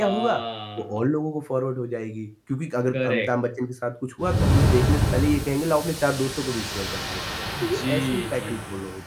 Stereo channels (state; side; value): identical; both; correlation 1.00